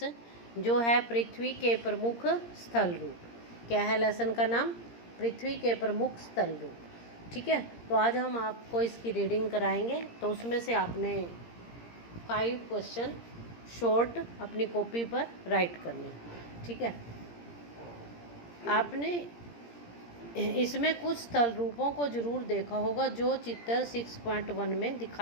जो है पृथ्वी के प्रमुख स्थल रूप। क्या है लेसन का नाम? पृथ्वी के प्रमुख स्थल रूप। ठीक है, तो आज हम आपको इसकी रीडिंग कराएंगे। तो उसमें से आपने 5 क्वेश्चन शॉर्ट अपनी कॉपी पर राइट करने। ठीक है, आपने इसमें कुछ स्थल रूपों को जरूर देखा होगा जो चित्र 6.1 में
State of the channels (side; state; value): right; late; 17 ms